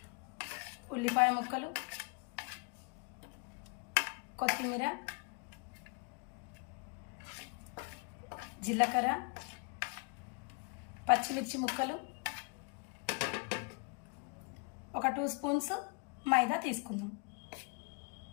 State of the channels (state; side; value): quieter; right; 34.0 dB